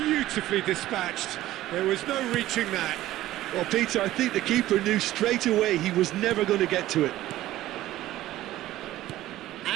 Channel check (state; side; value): quieter; left; 15.0 dB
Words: dispatched. There was no reaching that. Well, Peter, I think the keeper knew straight away he was never going to get to it.